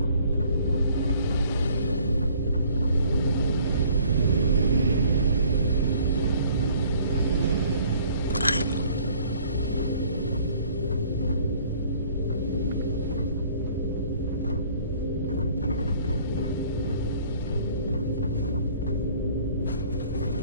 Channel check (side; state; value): both; inverted; correlation -0.56